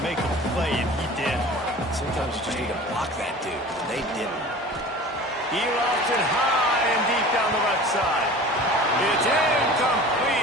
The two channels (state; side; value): normal; both; correlation 0.40